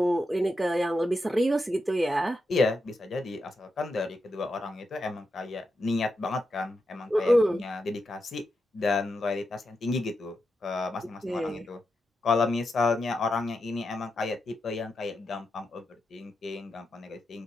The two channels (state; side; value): normal; both; correlation 0.86